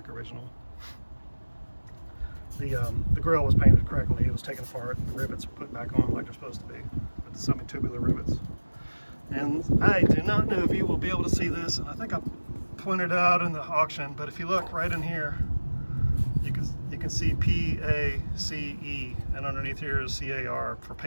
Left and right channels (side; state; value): both; inverted; correlation -1.00